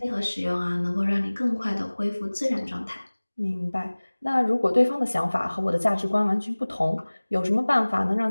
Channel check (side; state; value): both; inverted; correlation -1.00